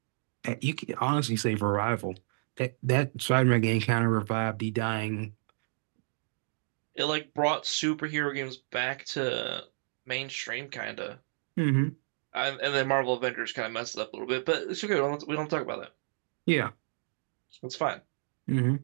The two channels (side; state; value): left; silent; digital silence